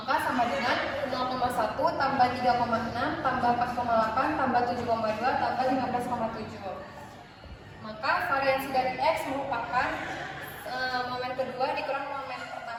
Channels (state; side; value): identical; both; correlation 1.00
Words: sama dengan 0,1 tambah 3,6 tambah 4,8 tambah 7,2 tambah 15,7. Maka variansi dari X merupakan momen kedua dikurang momen